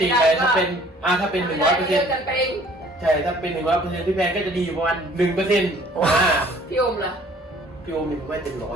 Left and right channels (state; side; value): normal; both; correlation 0.55